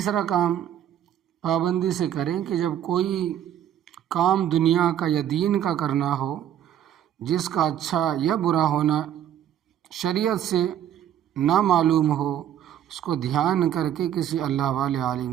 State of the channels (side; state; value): left; quieter; 10.6 dB